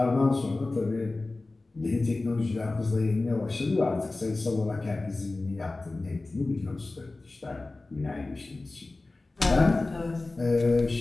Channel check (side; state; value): right; quieter; 3.2 dB